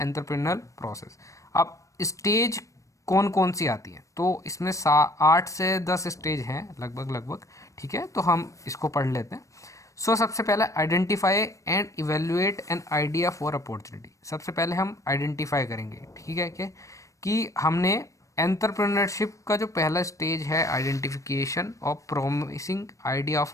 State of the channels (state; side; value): late; right; 0.16 ms